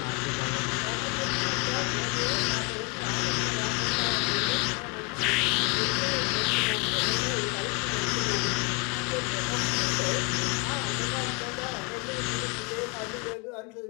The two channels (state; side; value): quieter; right; 32.2 dB